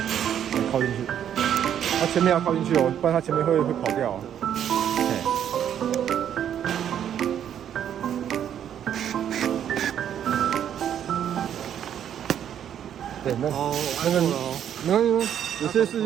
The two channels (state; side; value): quieter; left; 9.6 dB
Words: 靠进去。它前面要靠进去哦，不然它前面会跑掉哦。对，那个没关系，有些是